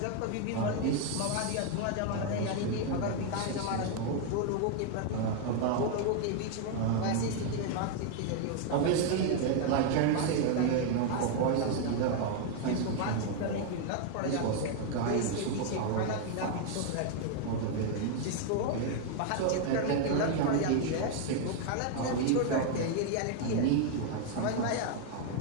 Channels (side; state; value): both; different; correlation 0.00